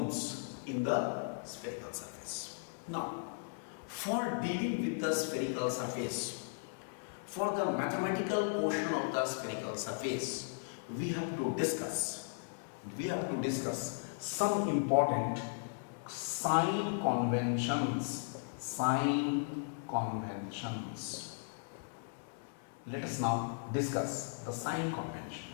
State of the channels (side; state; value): right; silent; 53 dB below the other